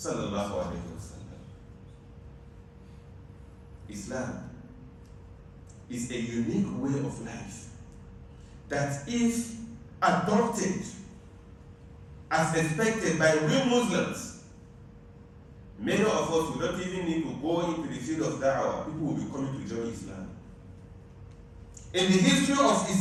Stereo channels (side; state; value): both; identical; correlation 1.00